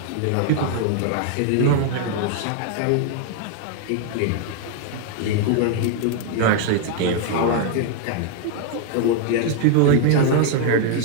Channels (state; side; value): different; both; correlation 0.00